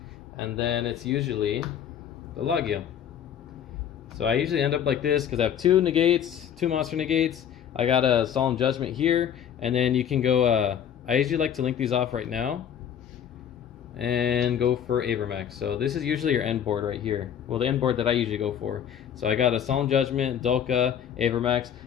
and then it's usually the Logia. So I usually end up like this because I have two monster negates. I got a Solemn Judgment here, and then you can go. I usually like to link these off right now and go for Avermax. So this is usually your end board right here. Well, the end board that I usually go for. So I got a Solemn Judgment, Dolka, Avermax.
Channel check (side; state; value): right; quieter; 9.0 dB